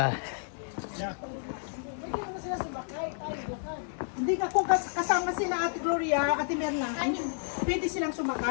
Hindi ka kung kasama sila Ate Gloria, Ate Merna, pwede silang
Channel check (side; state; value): right; silent; digital silence